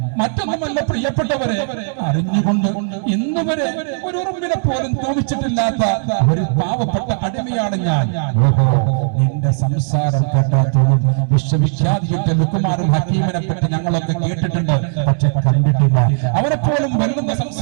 മറ്റൊന്നുമല്ല പ്രിയപ്പെട്ടവരെ, അറിഞ്ഞുകൊണ്ട് ഇന്നുവരെ ഒരു ഉറുമ്പിനെ പോലും തോന്നിച്ചിട്ടില്ലാത്ത ഒരു പാവപ്പെട്ട അടിമയാണ് ഞാൻ. ഓഹോ, നിന്റെ സംസാരം കേട്ടാത്തോളം വിശ്വവിഖ്യാതിയുടെ ലുക്കുമാറും ഹക്കീമിനെ പറ്റി ഞങ്ങളൊക്കെ കേട്ടിട്ടുണ്ട്, പക്ഷെ കണ്ടിട്ടില്ല. അവരെ പോലും വെല്ലുന്ന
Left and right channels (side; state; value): left; silent; digital silence